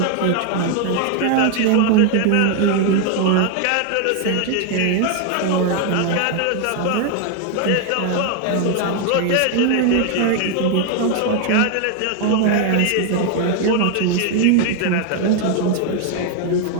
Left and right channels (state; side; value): different; both; correlation 0.00